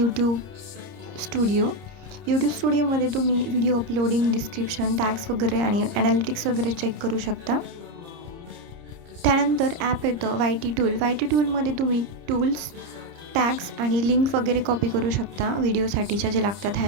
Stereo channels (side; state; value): left; late; 30 ms